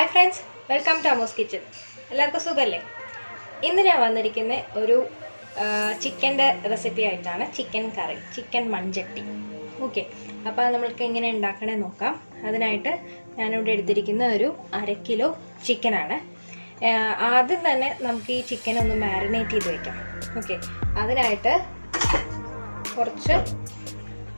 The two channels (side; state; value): both; inverted; correlation -1.00